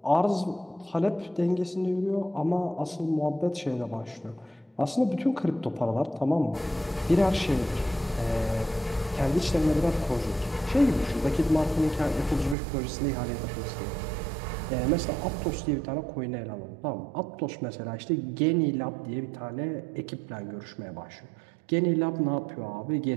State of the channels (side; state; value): left; drops out; at 12.6 s